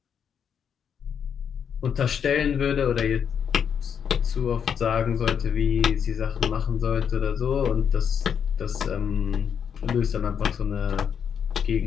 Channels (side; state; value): right; quieter; 7.6 dB